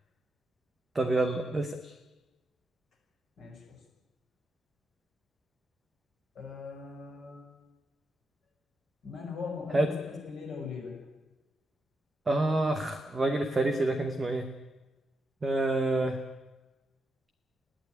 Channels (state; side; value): normal; both; correlation 0.84